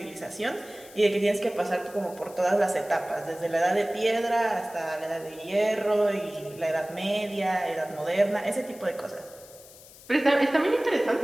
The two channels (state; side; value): noise; left; hiss, 21 dB below the sound